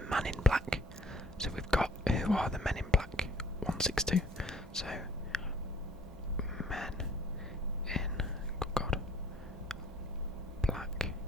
Man in Black. So we've got who are the Men in Black? 162. So Men in Black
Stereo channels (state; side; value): normal; both; correlation 0.57